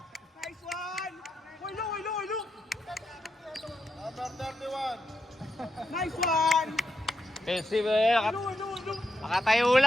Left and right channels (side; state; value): both; normal; correlation 0.84